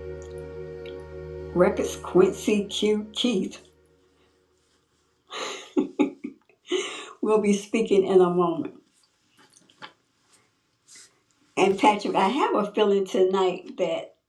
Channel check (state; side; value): identical; both; correlation 1.00